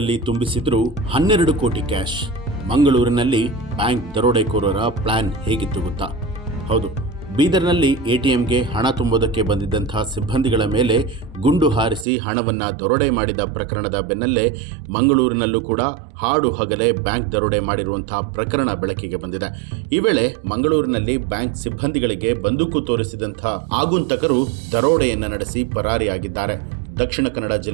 ತುಂಬಿಸಿದ್ರು 12 ಕೋಟಿ ಕ್ಯಾಶ್. ಮಂಗಳೂರಿನಲ್ಲಿ ಬ್ಯಾಂಕ್ ದರೋಡೆಕೋರರ ಪ್ಲಾನ್ ಹೇಗಿತ್ತು ಗೊತ್ತಾ? ಹೌದು, ಬೀದರ್ನಲ್ಲಿ ಎಟಿಎಂಗೆ ಹಣ ತುಂಬುವುದಕ್ಕೆ ಬಂದಿದ್ದಂಥ ಸಿಬ್ಬಂದಿಗಳ ಮೇಲೆ ಗುಂಡು ಹಾರಿಸಿ ಹಣವನ್ನು ದರೋಡೆ ಮಾಡಿದ ಪ್ರಕರಣದ ಬೆನ್ನಲ್ಲೇ ಮಂಗಳೂರಿನಲ್ಲೂ ಕೂಡ ಹಾಡು ಹಗಲೇ ಬ್ಯಾಂಕ್ ದರೋಡೆ ಮಾಡಿರುವಂಥ ಪ್ರಕರಣ ಬೆಳಕಿಗೆ ಬಂದಿದೆ. ಈ ವೇಳೆ ಮಂಗಳೂರಿನಲ್ಲಿ ಬ್ಯಾಂಕ್ ಸಿಬ್ಬಂದಿಗಳಿಗೆ ಬಂದೂಕು ತೋರಿಸಿದಂಥ ಆಗುಂತಕರು ದರೋಡೆಯನ್ನು ನಡೆಸಿ ಪರಾರಿಯಾಗಿದ್ದಾರೆ. ದಕ್ಷಿಣ ಕನ್ನಡ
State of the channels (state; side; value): drops out; left; at 12.1 s